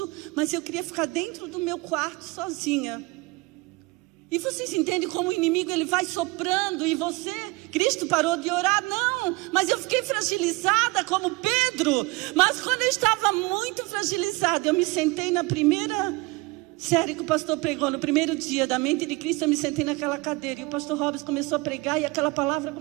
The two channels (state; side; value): quieter; left; 23.7 dB